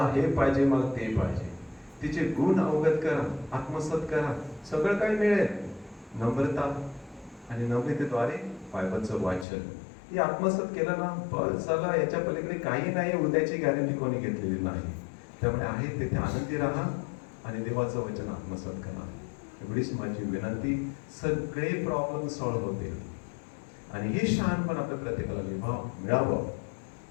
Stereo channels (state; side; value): drops out; right; at 9.5 s